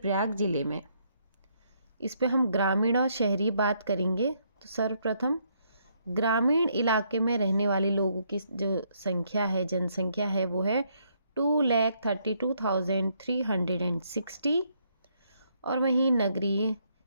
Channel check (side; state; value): both; inverted; correlation -0.72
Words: जिले में। इस पे हम ग्रामीण और शहरी बात करेंगे। तो सर्वप्रथम ग्रामीण इलाके में रहने वाले लोगों की जो संख्या है, जनसंख्या है, वो है 2,32,360। और वहीं नगरीय,